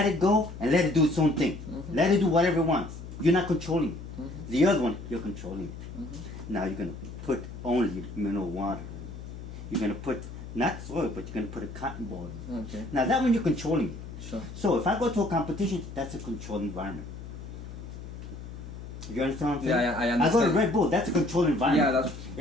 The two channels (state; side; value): noise; left; hum, 11 dB below the sound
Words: it go and let it do its own thing. Let it do whatever it wants. You're not controlling it. The other one, you're controlling it. Now you're gonna put only mineral water. You're gonna put not soil, but you're gonna put a cotton ball. Okay. Now that one you're controlling it. Sure. So if I go to a competition, that's a controlled environment. You understand what I'm saying? Yeah, I understand. I go to Red Bull, that's a controlled environment. Yeah, that's.